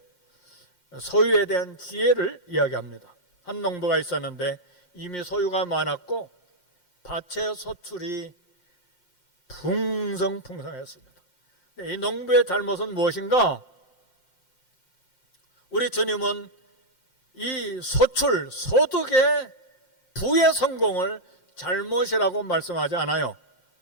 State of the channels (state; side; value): late; right; 5.6 ms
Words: 소유에 대한 지혜를 이야기합니다. 한 농부가 있었는데 이미 소유가 많았고 밭의 소출이 풍성했습니다. 이 농부의 잘못은 무엇인가? 우리 주님은 이 소출, 소득의 부의 성공을 잘못이라고 말씀하지 않아요.